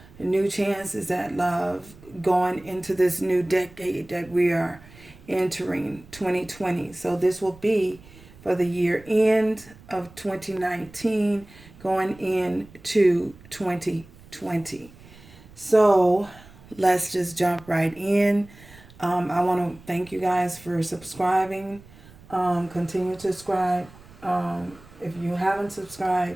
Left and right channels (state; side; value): noise; right; rumble, 22 dB below the sound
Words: new chances at love going into this new decade that we are entering 2020. So this will be for the year end of 2019 going into 2020. So let's just jump right in. I want to thank you guys for subscribing. Continue to subscribe. If you haven't